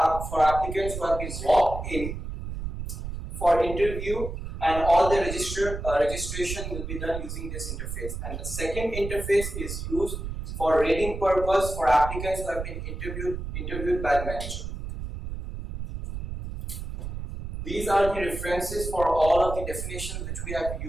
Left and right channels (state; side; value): noise; right; rumble, 6 dB below the sound